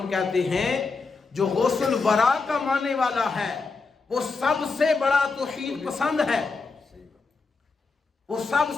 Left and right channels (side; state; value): right; quieter; 4.3 dB